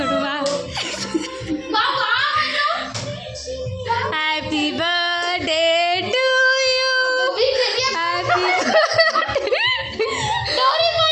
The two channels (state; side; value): identical; both; correlation 1.00